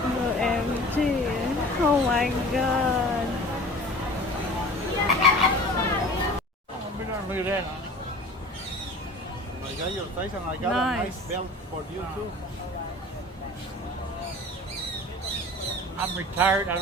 OMG. Oh my god. Look at that. I got your size and I got a nice belt for you too. I'm retired. I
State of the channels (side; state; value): both; normal; correlation 0.42